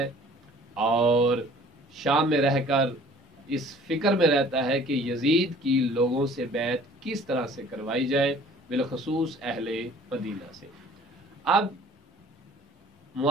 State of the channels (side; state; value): both; normal; correlation 0.51